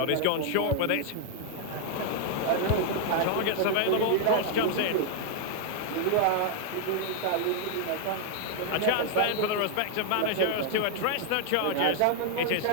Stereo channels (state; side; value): different; both; correlation 0.00